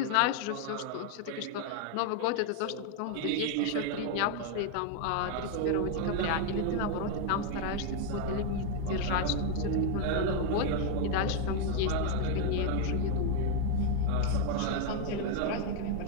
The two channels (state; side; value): different; both; correlation 0.01